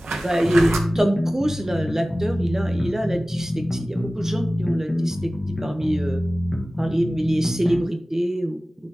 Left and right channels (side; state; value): both; normal; correlation 0.97